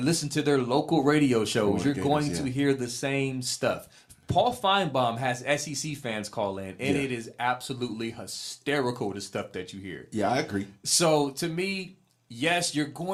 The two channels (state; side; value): identical; both; correlation 1.00